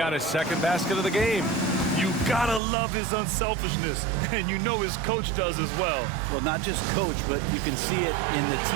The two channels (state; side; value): drops out; left; at 2.6 s